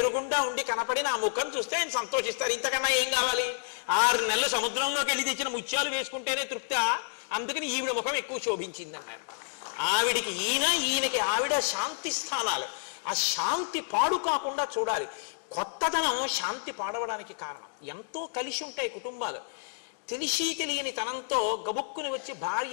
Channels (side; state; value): right; silent; digital silence